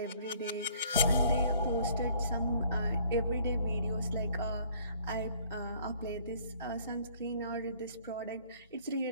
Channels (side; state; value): both; inverted; correlation -0.58